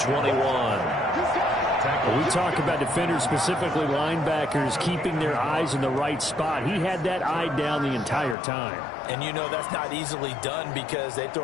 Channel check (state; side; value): drops out; right; at 8.3 s